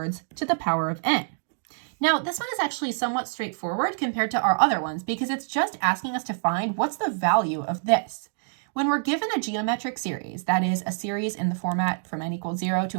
to the power of n. Now, this one is actually somewhat straightforward compared to our other ones because it's just asking us to find what's the value of this. When we're given a geometric series, that is a series in the format from n equals 0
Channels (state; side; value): silent; left; digital silence